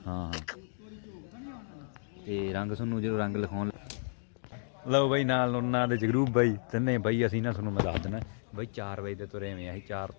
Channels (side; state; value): right; silent; digital silence